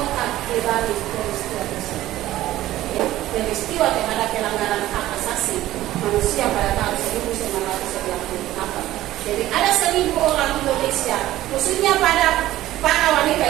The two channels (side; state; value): left; quieter; 14.9 dB